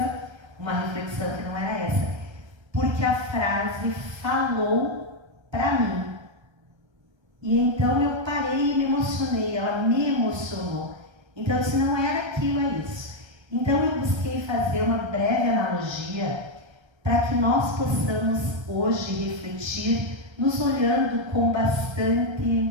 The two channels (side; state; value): left; late; 1.3 ms